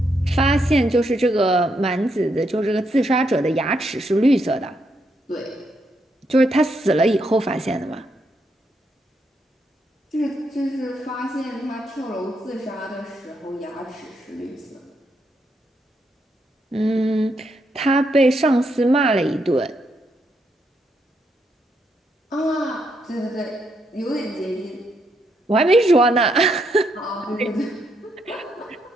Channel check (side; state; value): both; normal; correlation 0.78